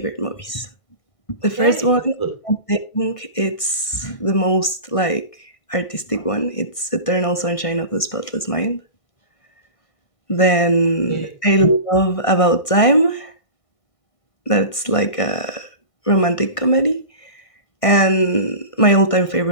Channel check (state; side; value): late; right; 1.6 ms